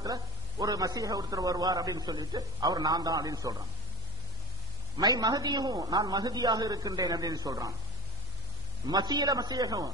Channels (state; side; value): normal; both; correlation 0.23